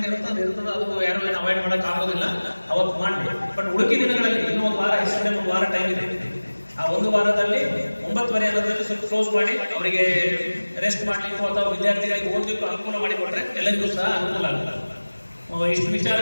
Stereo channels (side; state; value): both; inverted; correlation -1.00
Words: ಇರ್ತದೆ. ಅದು ಯಾರು ಏನು ಅವಾಯ್ಡ್ ಮಾಡಕ್ ಆಗೋದಿಲ್ಲ, ಅವತ್ತು ಮಾಡಿ. ಬಟ್ ಉಳುಕಿ ದಿನಗಳಲ್ಲಿ ಇನ್ನೂ ಒಂದು ವಾರ, ಹೆಸರು ಒಂದು ವಾರ ಟೈಮ್ ಇದೆ. ಆ ಒಂದು ವಾರದಲ್ಲಿ 9:30 ಅನ್ನೋದ್ರಲ್ಲಿ ಸ್ವಲ್ಪ ಕ್ಲೋಸ್ ಮಾಡಿ ಅವರಿಗೆ ರೆಸ್ಟ್ ಮಾಡ್ಲಿಕ್ಕೂ ಅಥವಾ ವಿದ್ಯಾರ್ಥಿಗಳಿಗೆ ಓದಲಿಕ್ಕೂ ಅನುಕೂಲ ಮಾಡಿಕೊಟ್ರೆ ಎಲ್ಲರಿಗೂ ಸಹ ಅನುಕೂಲ ಆಗುತ್ತೆ. ಇಷ್ಟು